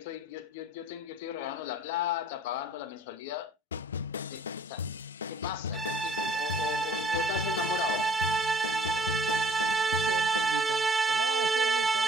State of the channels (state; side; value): normal; both; correlation 0.57